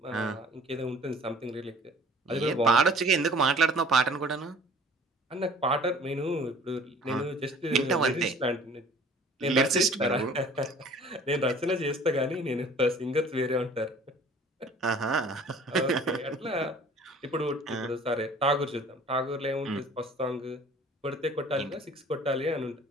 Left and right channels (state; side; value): normal; both; correlation 0.50